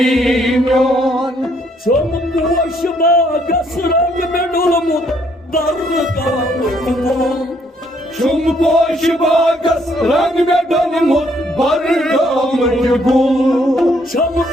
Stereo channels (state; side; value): normal; both; correlation 0.68